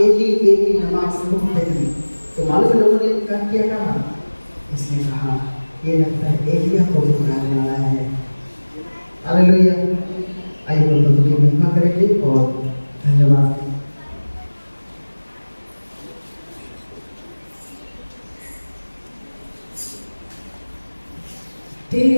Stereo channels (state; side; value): inverted; both; correlation -1.00